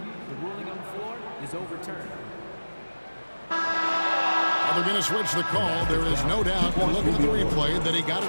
ruling on the floor is overturned. They're going to switch the call. There is no doubt, looking at the replay, that he got it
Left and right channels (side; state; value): both; inverted; correlation -1.00